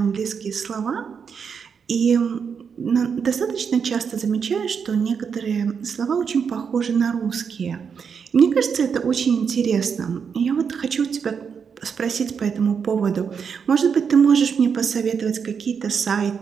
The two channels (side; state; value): left; quieter; 6.5 dB